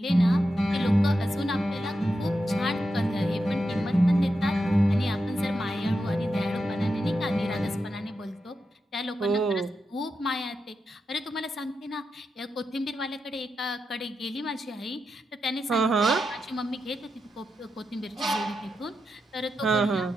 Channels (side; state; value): both; normal; correlation 0.87